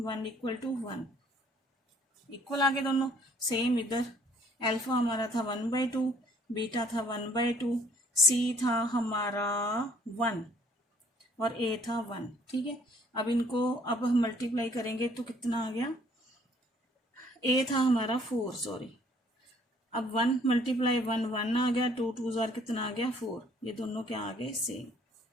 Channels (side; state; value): both; normal; correlation 0.61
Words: 1, इक्वल आ गए दोनों सेम। इधर अल्फा हमारा था 1/2, बीटा था 1/2, सी था हमारा 1 और ए था 1। ठीक है, अब इनको अब हम मल्टीप्लाई करेंगे तो कितना आ गया, ए था हमारा 4, सॉरी। अब 1 मल्टीप्लाई 1 1 आ गया, 2 2 जार कितना आ गया 4, ये दोनों क्या आ गए सेम।